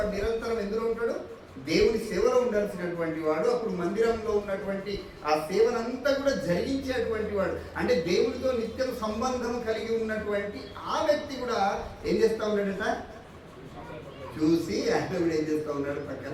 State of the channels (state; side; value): identical; both; correlation 1.00